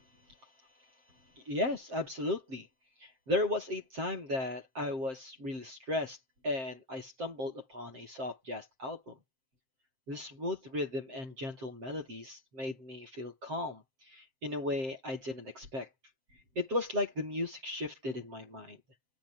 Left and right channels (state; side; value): late; left; 7.6 ms